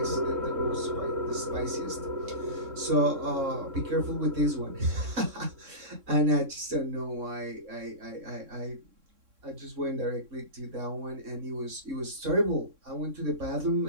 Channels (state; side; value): late; left; 3.6 ms